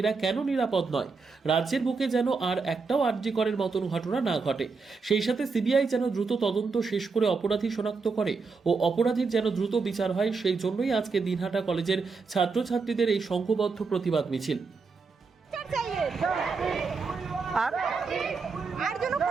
কেন নিরাপদ নয়, রাজ্যের বুকে যেন আর একটাও আরজিকরের মতন ঘটনা না ঘটে, সেই সাথে সিবিআই যেন দ্রুত তদন্ত শেষ করে অপরাধী শনাক্ত করে ও অপরাধীর যেন দ্রুত বিচার হয়, সেই জন্যই আজকে দিনহাটা কলেজের ছাত্রছাত্রীদের এই সংঘবদ্ধ প্রতিবাদ মিছিল। আর যেন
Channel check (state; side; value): quieter; left; 4.6 dB